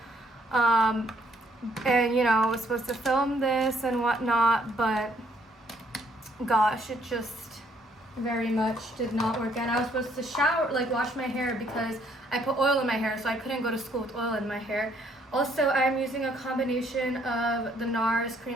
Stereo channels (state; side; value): normal; both; correlation 0.67